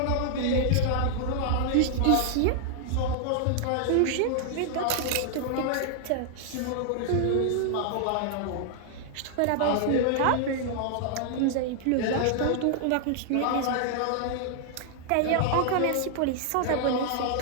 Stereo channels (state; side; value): different; both; correlation -0.01